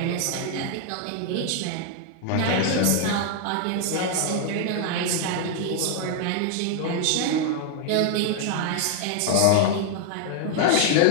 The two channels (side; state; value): both; different; correlation 0.00